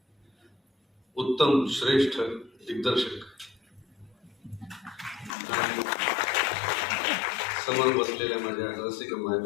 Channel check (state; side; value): drops out; right; at 5.3 s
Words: उत्तम श्रेष्ठ दिग्दर्शक आणि समोर बसलेल्या माझ्या रसिक